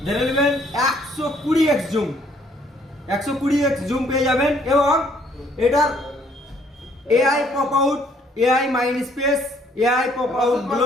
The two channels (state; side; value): normal; both; correlation 0.64